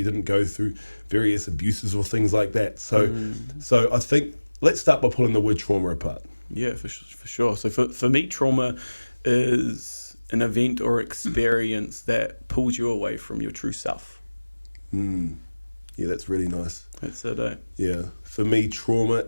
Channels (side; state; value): both; inverted; correlation -1.00